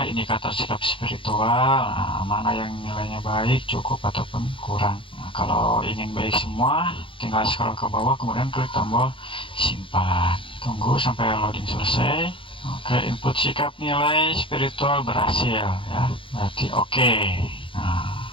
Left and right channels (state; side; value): late; right; 0.25 ms